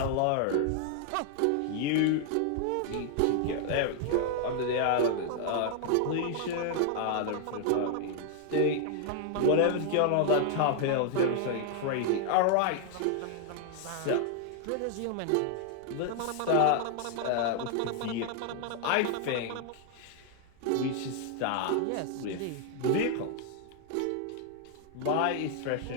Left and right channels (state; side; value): different; both; correlation 0.00